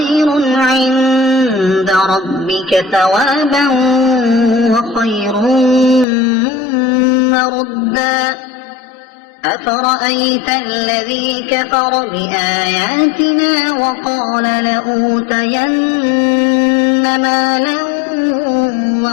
عند ربك ثوابا وخير مردا أفرأيت الذي كفر بآياتنا وقال لأوتين مالا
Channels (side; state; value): right; drops out; at 6.1 s